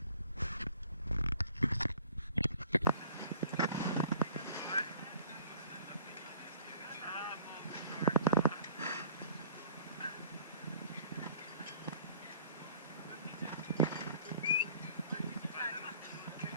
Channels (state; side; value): inverted; both; correlation -0.51